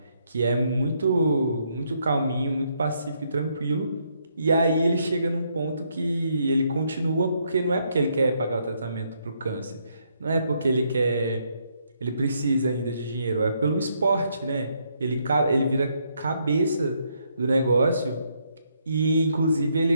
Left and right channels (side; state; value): both; inverted; correlation -0.74